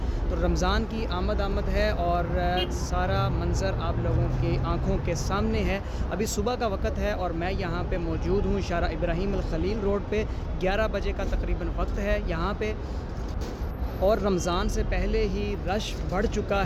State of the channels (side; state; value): both; identical; correlation 1.00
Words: तो रमज़ान की आमद है और सारा मंज़र आप लोगों की आँखों के सामने है। अभी सुबह का वक़्त है और मैं यहाँ पे मौजूद हूँ शारा इब्राहिम अल खलील रोड पे। 11 बजे का तकरीबन वक्त है यहाँ पे और रमज़ान से पहले ही रश बढ़ चुका